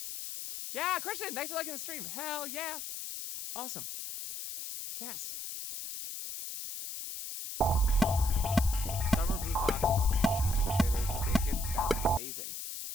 Yeah, Christian, thanks for liking the stream. Hell yeah. Awesome. Yes. Summer Blue Fox wants cheesy potatoes with bacon. That's amazing.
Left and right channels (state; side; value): noise; left; hiss, 7 dB below the sound